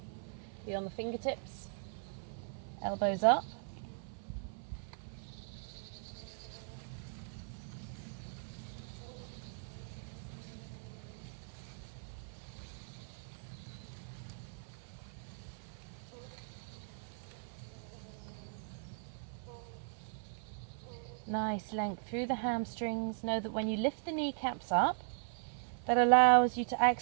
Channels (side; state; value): left; silent; 52 dB below the other